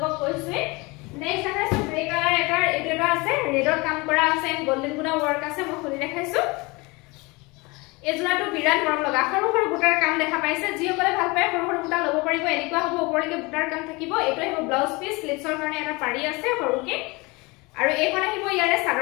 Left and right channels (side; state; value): right; quieter; 25.3 dB